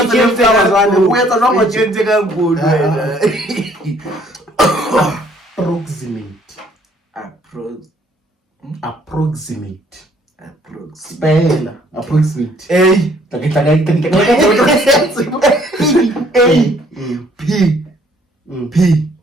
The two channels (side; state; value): both; normal; correlation 0.62